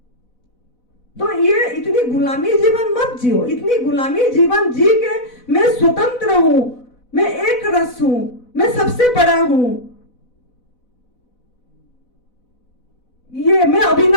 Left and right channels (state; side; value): late; right; 4.0 ms